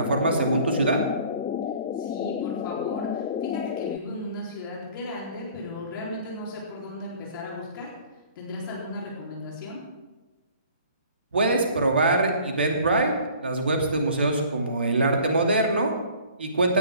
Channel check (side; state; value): both; inverted; correlation -0.50